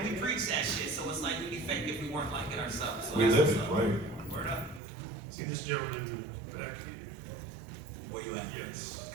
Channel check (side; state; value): left; drops out; at 4.8 s